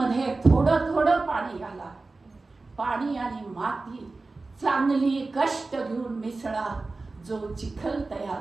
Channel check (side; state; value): left; quieter; 3.6 dB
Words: थोडं थोडं पाणी घाला. पाणी आणि माती चांगली कष्ट घेऊन मिसळा. जो चिखल तयार